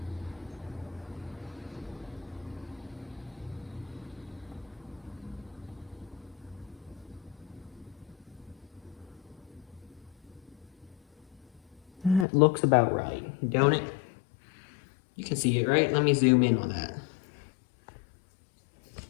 That looks about right, don't it? You can see it, right? Let me zoom in on that.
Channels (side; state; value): right; drops out; at 12.2 s